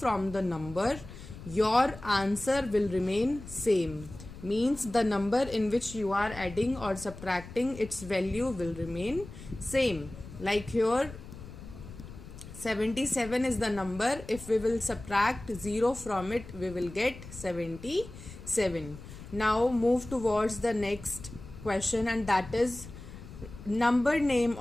the number, your answer will remain same. Means the number in which you are adding or subtracting, its value will remain same. Like here 77 is the number, if we will subtract 0 from it we will get 77. Now move towards the next question, and that is number name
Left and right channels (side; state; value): left; noise; rumble, 15 dB below the sound